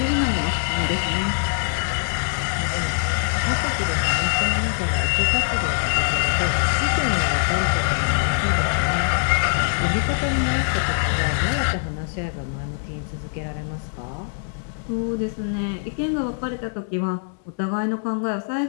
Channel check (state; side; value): silent; right; digital silence